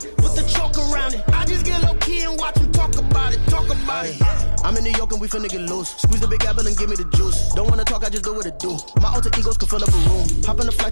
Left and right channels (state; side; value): inverted; both; correlation -1.00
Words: with the chalk around it. I just get low key and watch them talk about it. I'm in New York and we finna get loose. Squeeze the big apple and give me the juice. Don't wanna talk, I just do what it do. My alter egos can fill up a room. Hop in the